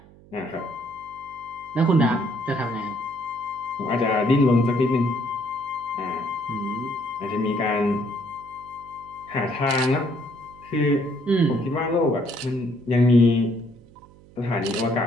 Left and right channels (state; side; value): noise; right; hum, 24 dB below the sound